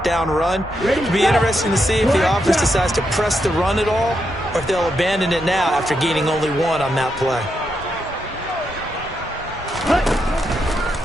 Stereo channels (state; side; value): normal; both; correlation 0.82